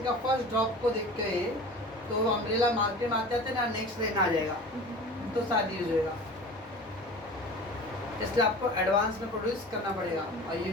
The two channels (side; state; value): both; normal; correlation 0.38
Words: का फर्स्ट ड्रॉप को देख के, तो अम्ब्रेला मार्केट में आते आते ना नेक्स्ट रेन आ जाएगा, तो शायद यूज होएगा। इसलिए आपको एडवांस में प्रोड्यूस करना पड़ेगा, और